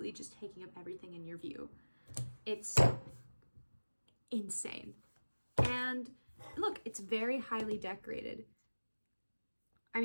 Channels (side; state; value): both; inverted; correlation -1.00